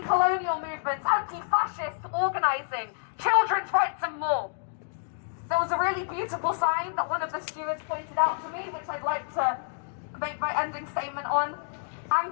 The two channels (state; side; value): silent; right; digital silence